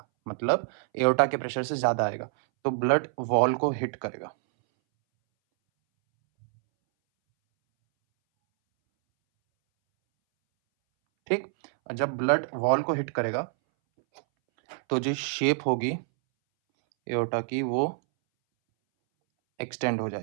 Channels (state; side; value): silent; left; 60 dB below the other